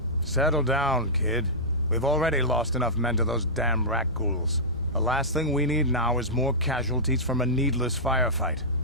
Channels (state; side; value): normal; both; correlation -0.14